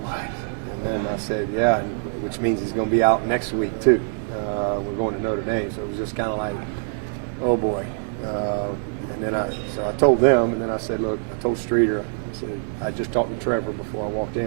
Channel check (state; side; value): silent; left; 63 dB below the other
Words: what? And then I said, yeah, which means he's going to be out next week too. We're going to Notre Dame, so it was just kind of like, oh boy. And then so I told them, and then I said, look, I told Streeter, I said, I just talked to Trevor before I walked in.